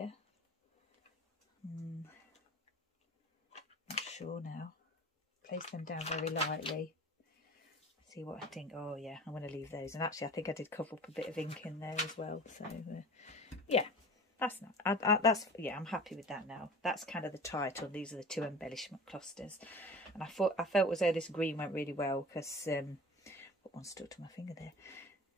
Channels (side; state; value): both; normal; correlation 0.39